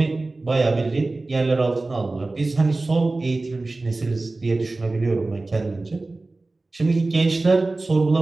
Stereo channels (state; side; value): quieter; left; 3.2 dB